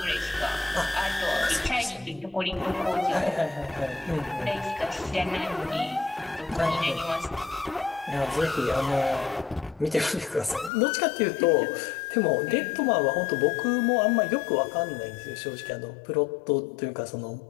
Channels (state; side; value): drops out; right; at 10.7 s